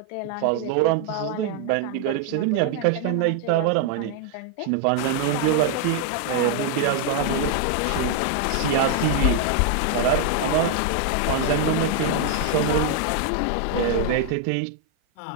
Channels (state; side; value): different; both; correlation 0.00